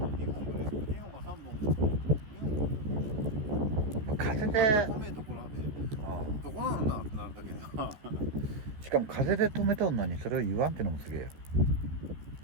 本か3本。風で止めところで、どこなんだってなるだけな。しかも風で止めとんのにそれを言わんってのもすげえよ。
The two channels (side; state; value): left; late; 14 ms